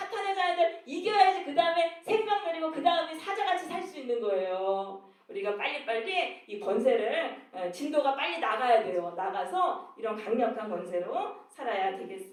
자녀들 이겨야지 그 다음에 생명 누리고 그 다음에 사자같이 살 수 있는 거예요. 우리가 빨리빨리 이 권세를 진도가 빨리 나가야 돼요. 나가서 이런 강력한 권세로 살아야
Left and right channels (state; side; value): identical; both; correlation 1.00